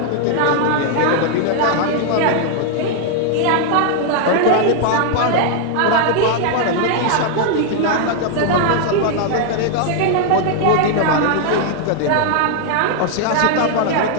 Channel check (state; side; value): different; both; correlation 0.00